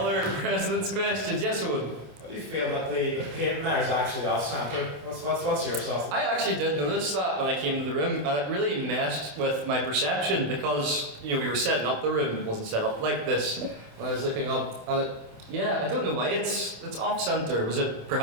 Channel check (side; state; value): left; late; 28 ms